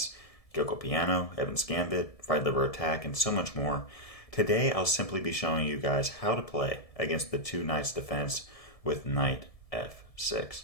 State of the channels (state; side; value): late; right; 1.7 ms